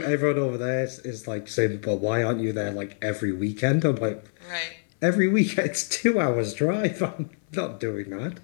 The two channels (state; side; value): silent; right; 61 dB below the other